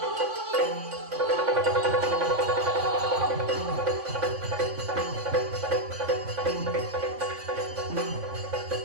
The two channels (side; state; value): left; late; 3.5 ms